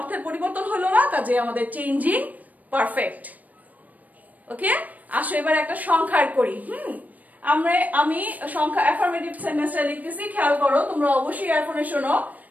পরিবর্তন হলো না, কাজে আমাদের চেঞ্জিং পারফেক্ট। ওকে, আসো এবার একটা সংখ্যার করি। আমি সংখ্যা অ্যাফার্মেটিভ সেন্টেন্সটা লিখতেছি, খেয়াল করো, তোমরা অবশ্যই এখনো শোনো।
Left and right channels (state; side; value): late; left; 0.076 ms